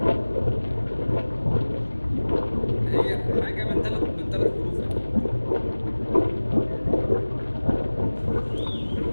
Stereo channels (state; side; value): inverted; both; correlation -1.00